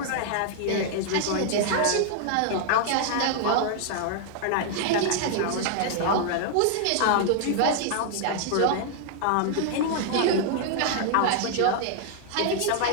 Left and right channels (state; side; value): different; both; correlation 0.00